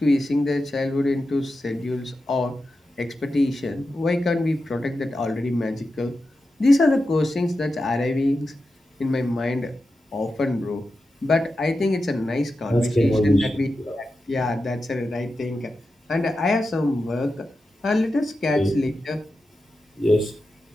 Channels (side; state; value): both; normal; correlation 0.90